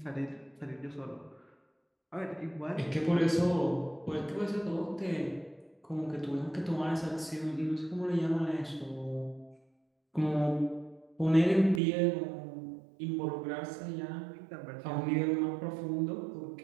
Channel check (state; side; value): drops out; left; at 11.8 s